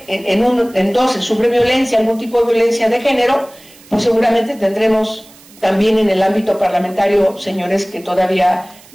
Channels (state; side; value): noise; right; hiss, 24 dB below the sound